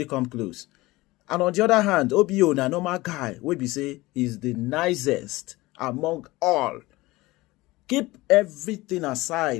come close. And on the other hand, OBO na normal guy, we be say he's the nicest among all. Keep everything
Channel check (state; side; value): quieter; right; 20.2 dB